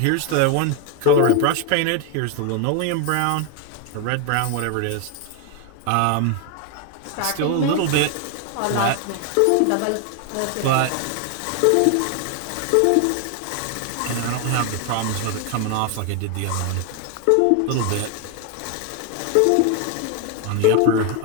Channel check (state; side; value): different; both; correlation 0.01